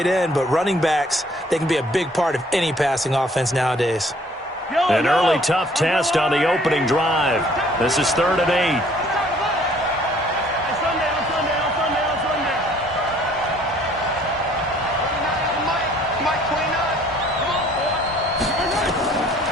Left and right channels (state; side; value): normal; both; correlation 0.58